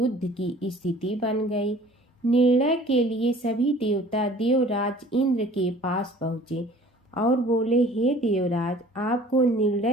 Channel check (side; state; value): both; normal; correlation 0.50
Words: की स्थिति बन गई। निर्णय के लिए सभी देवता देवराज इंद्र के पास पहुँचे और बोले, हे देवराज, आपको